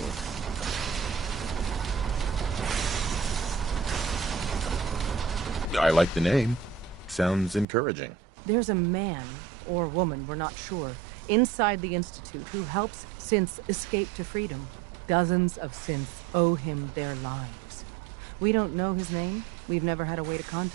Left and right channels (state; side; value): drops out; left; at 7.7 s